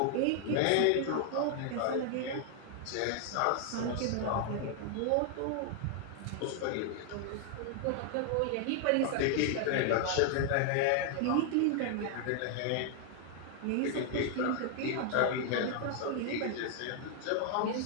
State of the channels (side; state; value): both; different; correlation 0.00